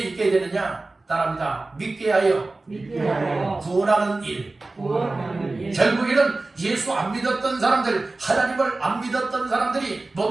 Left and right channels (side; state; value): left; quieter; 3.2 dB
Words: 되느냐? 따라합니다. 믿게 하여 믿게 하여 구원하는 일. 구원하는 일. 결국에는 예수 안 믿었던 사람들, 하나님을 안 믿었던 사람들이, 못